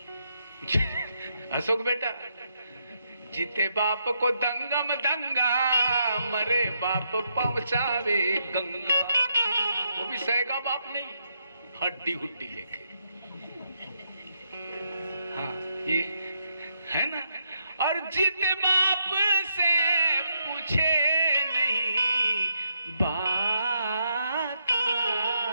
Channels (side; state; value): both; inverted; correlation -0.78